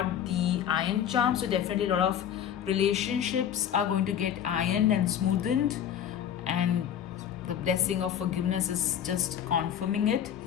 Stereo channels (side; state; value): right; quieter; 9.6 dB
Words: the iron charm, so definitely a lot of relationships are going to get ironed and smoothened, and the blessing of forgiveness is just confirming it.